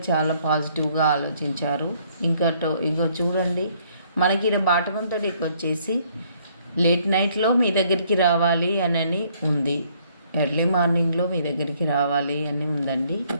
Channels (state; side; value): inverted; both; correlation -0.65